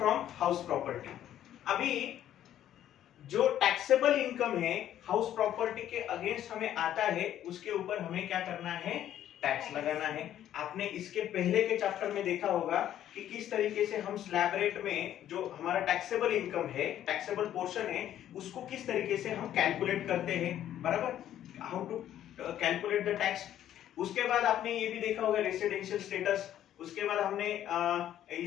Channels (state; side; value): quieter; right; 11.5 dB